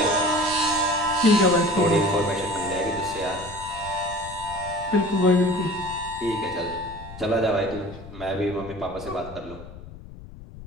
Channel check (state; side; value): noise; left; rumble, 15 dB below the sound